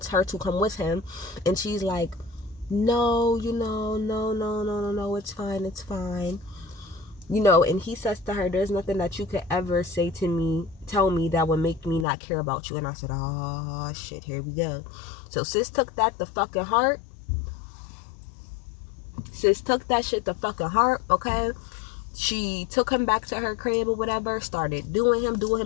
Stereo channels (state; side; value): drops out; right; at 12.1 s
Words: come with him. And she's like, no, no, it's fine. And he says to her, there's nothing that you could ever tell me that would make me not care about you. And I said, oh shit, here we go. So sis took that the fucking heart. Sis took that shit the fucking heart, okay? She took him back to her crib or whatever, started doing him,